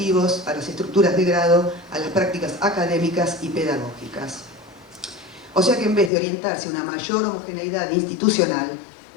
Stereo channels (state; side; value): drops out; right; at 6.1 s